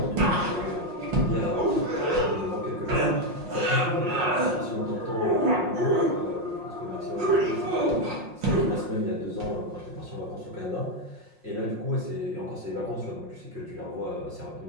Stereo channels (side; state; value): left; late; 5.6 ms